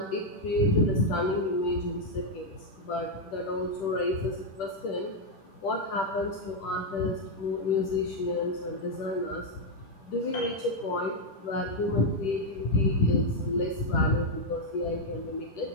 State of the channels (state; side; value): late; right; 10 ms